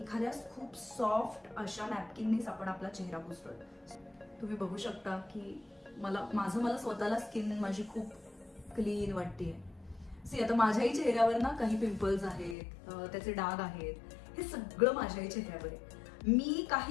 खूप सॉफ्ट अशा नॅपकिननीच आपण आपला चेहरा पुसतोय. तुम्ही बघू शकता की मला स्वतःला स्किन माझी खूप क्लीन वाटतेय. सी, आता माझ्याही चेहऱ्यावर ना काही पिंपल्स आहेत, त्याचे डाग आहेत, हे सगळं माझ्याही चेहऱ्यावर आहे. मी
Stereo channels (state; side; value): drops out; right; at 12.6 s